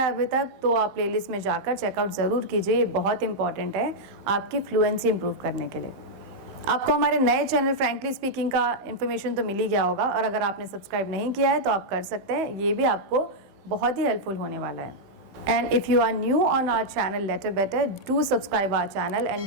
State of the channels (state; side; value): late; left; 15 ms